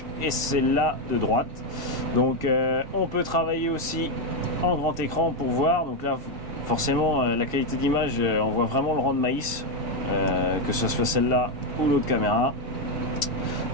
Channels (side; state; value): left; late; 2.7 ms